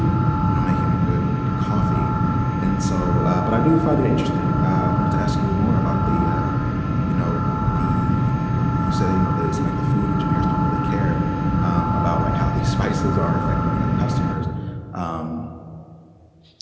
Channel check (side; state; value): both; identical; correlation 1.00